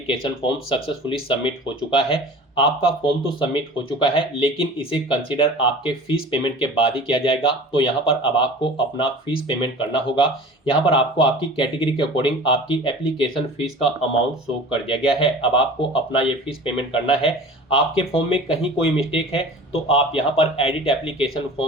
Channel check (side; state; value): both; normal; correlation 0.40